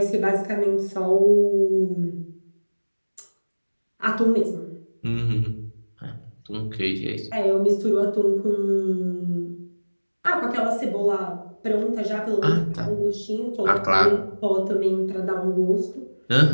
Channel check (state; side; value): inverted; both; correlation -1.00